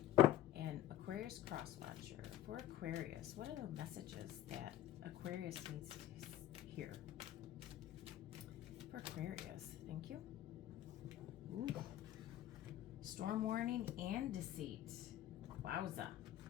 and Aquarius Cross Watcher. For Aquarius, what are the messages that Aquarius needs to hear? For Aquarius, thank you. Ooh. Storm warning and deceit. Wowza.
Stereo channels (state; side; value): quieter; right; 13.0 dB